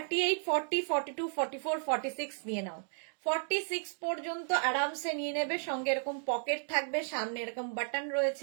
40, 42, 44, 46 নিয়ে নাও, 46 পর্যন্ত আরামসে নিয়ে নেবে। সঙ্গে এরকম পকেট থাকবে, সামনে এরকম বাটন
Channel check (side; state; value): left; silent; 55 dB below the other